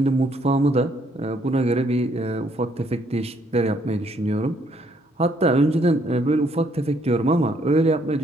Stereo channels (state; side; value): normal; both; correlation 0.68